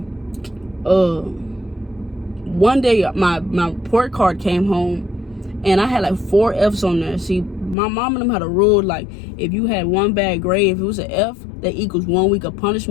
one day my report card came home, and I had like 4 F's on there. See, my mom and them had a rule, like, if you had one bad grade, if it was an F, that equals 1 week of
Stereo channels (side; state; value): right; drops out; at 7.8 s